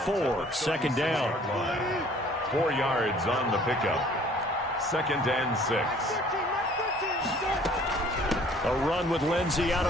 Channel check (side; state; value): both; normal; correlation 0.55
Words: 2nd down. 4 yards on the pickup. 2nd and 6. A run with Lindsey out